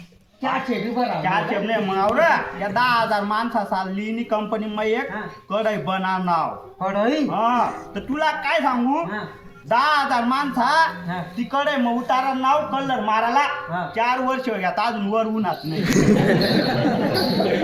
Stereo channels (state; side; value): identical; both; correlation 1.00